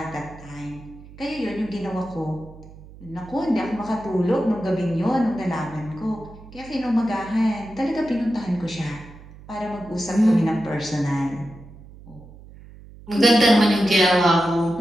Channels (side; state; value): right; noise; hum, 19 dB below the sound